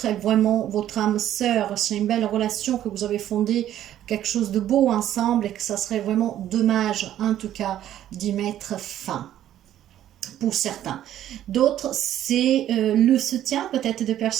est vraiment votre âme sœur. C'est une belle relation que vous avez fondée, quelque chose de beau ensemble et que ça serait vraiment dommage en tout cas d'y mettre fin. Pour certains. D'autres, c'est le soutien peut-être de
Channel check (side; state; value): left; quieter; 11.9 dB